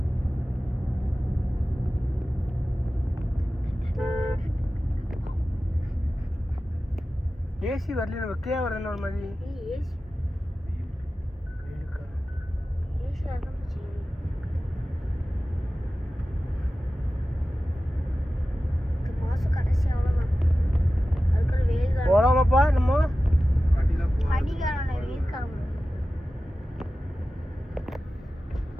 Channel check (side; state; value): both; normal; correlation 0.95